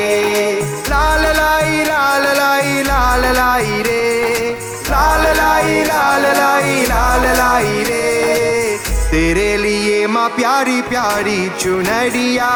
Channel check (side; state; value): both; identical; correlation 1.00